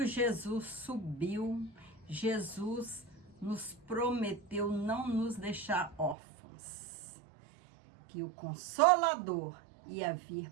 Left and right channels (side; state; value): left; drops out; at 6.2 s